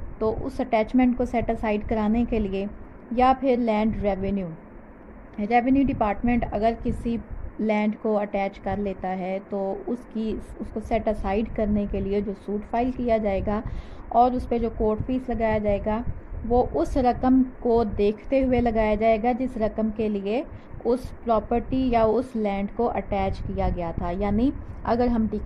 तो उस अटैचमेंट को सेट असाइड कराने के लिए, या फिर लैंड रेवेन्यू डिपार्टमेंट अगर किसी लैंड को अटैच कर लेता है तो उसको सेट असाइड करने के लिए जो सूट फाइल किया जाएगा और उस पर जो कोर्ट फीस लगाया जाएगा वो उस रकम को देखते हुए लगाया जाएगा जिस रकम के लिए उस प्रॉपर्टी या उस लैंड को अटैच किया गया था। यानी अगर हम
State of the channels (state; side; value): identical; both; correlation 1.00